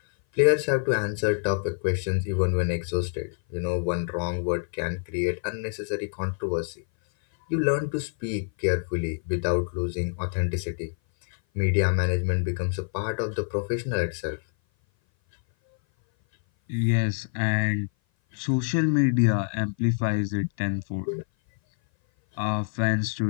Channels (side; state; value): right; silent; 57 dB below the other